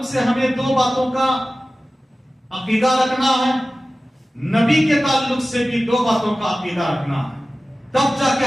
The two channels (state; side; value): normal; both; correlation 0.96